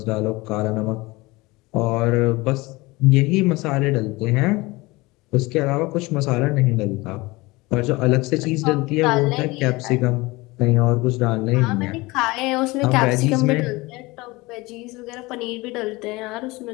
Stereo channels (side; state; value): right; quieter; 22.3 dB